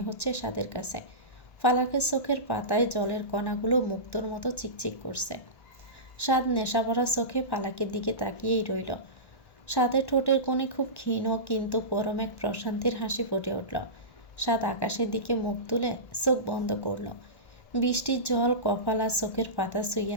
হচ্ছে সাদের কাছে। ফালাকের চোখের পাতায় জলের কণাগুলো মুক্তোর মতো চিকচিক করছে। সাদ নেশাভরা চোখে ফালাকের দিকে তাকিয়েই রইল। সাদের ঠোঁটের কোণে খুব ক্ষীণ কিন্তু পরম এক প্রশান্তির হাসি ফুটে উঠল। সাদ আকাশের দিকে মুখ তুলে চোখ বন্ধ করল। বৃষ্টির জল কপাল আর চোখের পাতা ছুঁয়ে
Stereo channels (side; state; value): right; late; 1.1 ms